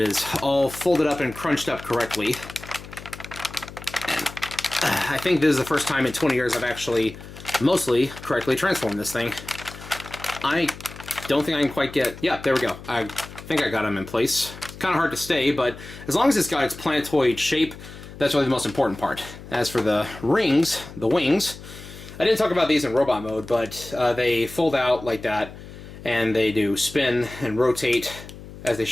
all folded up and crunched up correctly. And I think this is the first time in 20 years I've actually mostly correctly transformed this thing. I don't think I can quite get... Yeah, there we go. I think I got them in place. Kind of hard to stay, but as long as it's got its planetoid shape, that's really the most important part. As for the rings, the wings, I didn't talk about these in robot mode, but they fold out like that, and they do spin and rotate as they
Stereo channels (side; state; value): left; noise; hum, 15 dB below the sound